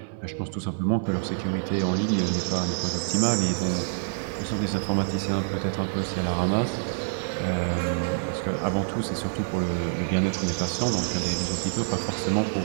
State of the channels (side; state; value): left; silent; digital silence